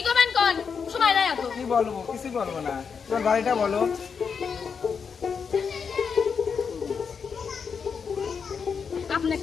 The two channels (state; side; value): quieter; right; 6.1 dB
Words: করবেন কোন? সময় নাই এত। কি বলবো? কিছুই বলবো না। তোমার বাড়িটা বলো। আপনার